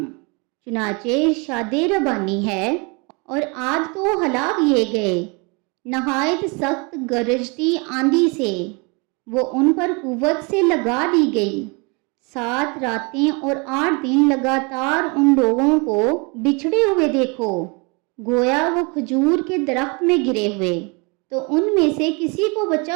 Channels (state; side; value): quieter; left; 30.6 dB